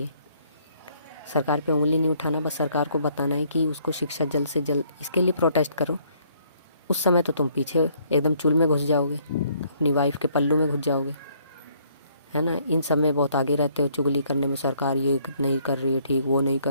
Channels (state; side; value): inverted; both; correlation -0.66